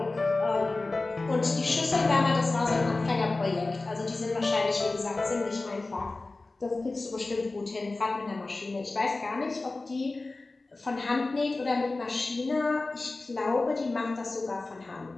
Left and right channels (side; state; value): right; quieter; 3.3 dB